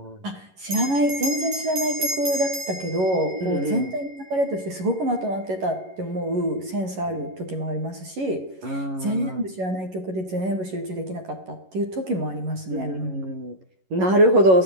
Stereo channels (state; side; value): late; left; 11 ms